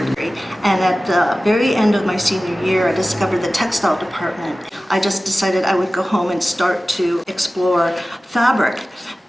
And at the very end of my senior year, I discovered the textile department. I just decided I would go home and start to explore fabric.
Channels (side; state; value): both; normal; correlation 0.96